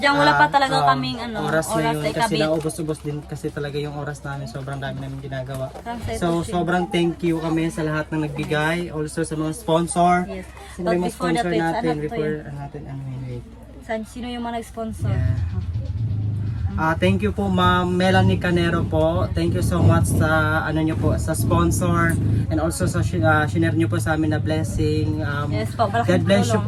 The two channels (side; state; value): both; identical; correlation 1.00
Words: wala pa talaga kaming, ano, oras oras ngayon na kasi ikabit. naubos-ubos din kasi talaga yung oras namin. Sobrang dami namin ginagawa. Parang sa ito, So, Shin. sobrang thank you kami sa lahat ng nagbigay. Also sa mga sponsor. Yes. Sino But yung mga before the sponsor tweets, natin? ano to Before yun? natin, wait. Sino yung mga nag-sponsor? Thank you po Ma'am Melanie Canero po. Thank you so much sa ano niyo po sa sponsor and also sa shinare niyo po sa amin na blessing. Yes po, malaking God bless you